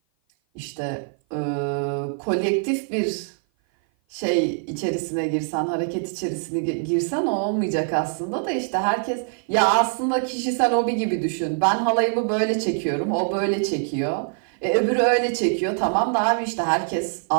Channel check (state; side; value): silent; left; 55 dB below the other